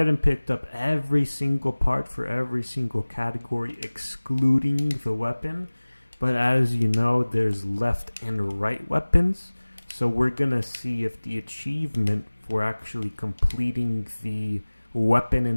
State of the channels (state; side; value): inverted; both; correlation -1.00